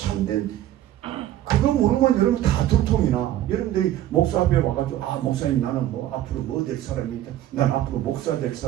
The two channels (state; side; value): quieter; left; 13.1 dB